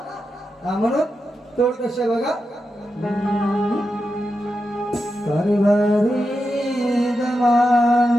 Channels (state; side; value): normal; both; correlation 0.88